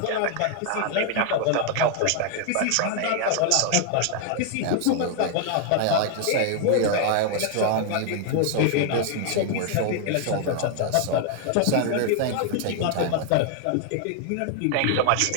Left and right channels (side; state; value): both; different; correlation 0.00